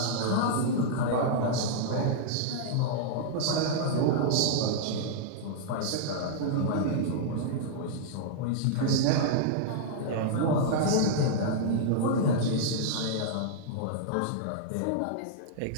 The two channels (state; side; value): different; both; correlation -0.02